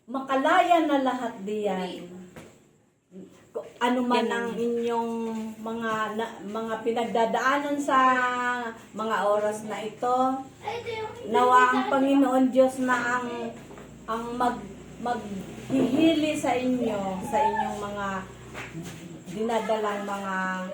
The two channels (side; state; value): both; identical; correlation 1.00